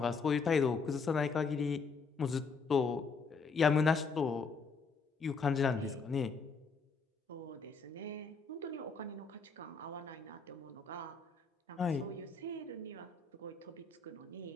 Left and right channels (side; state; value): right; quieter; 4.8 dB